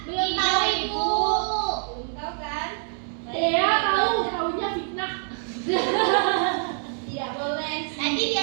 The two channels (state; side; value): silent; left; 62 dB below the other